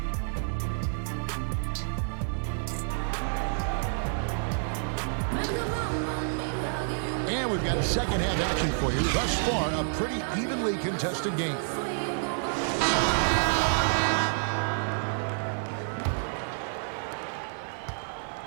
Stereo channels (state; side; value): silent; left; digital silence